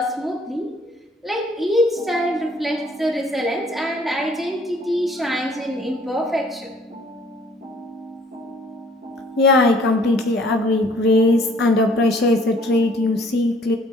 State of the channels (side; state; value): both; normal; correlation 0.58